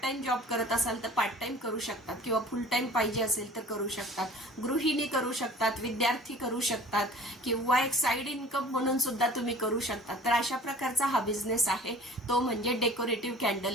टाइम जॉब करत असाल तर पार्ट टाइम करू शकतात, किंवा फुल टाइम पाहिजे असेल तर करू शकतात, गृहिणी करू शकतात, विद्यार्थी करू शकतात, किंवा एक साइड इन्कम म्हणून सुद्धा तुम्ही करू शकता। तर अशा प्रकारचा हा बिझनेस आहे, तो म्हणजे डेकोरेटिव्ह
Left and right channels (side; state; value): both; normal; correlation 0.46